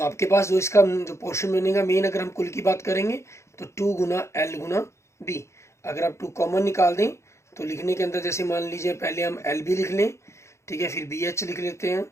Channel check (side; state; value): right; late; 0.14 ms